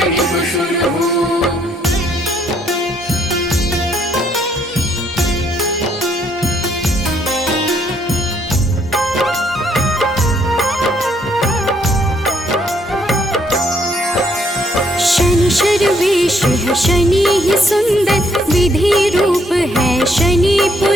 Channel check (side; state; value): both; normal; correlation 0.69